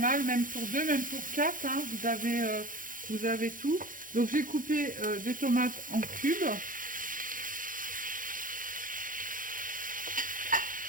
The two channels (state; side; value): late; left; 0.39 ms